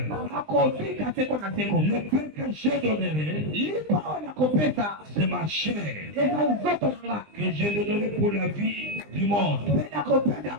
akobika seko na seko. Le pain que je donnerai, Lipa oyo nakopesa c'est ma chair eza nzoto na nga. que je donnerai pour la vie du monde. Mpe nakopesa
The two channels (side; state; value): left; late; 20 ms